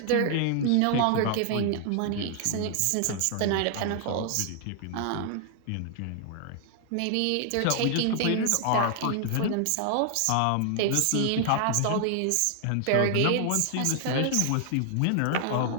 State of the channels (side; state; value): both; different; correlation 0.00